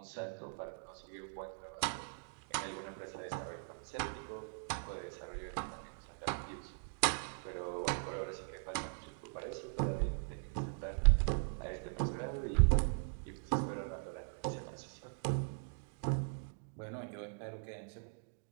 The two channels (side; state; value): left; silent; digital silence